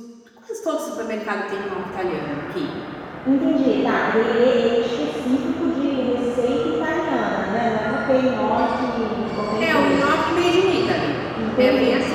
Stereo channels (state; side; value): identical; both; correlation 1.00